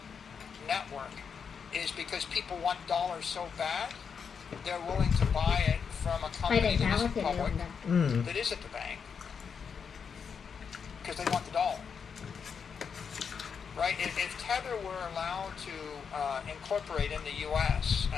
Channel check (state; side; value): quieter; right; 6.4 dB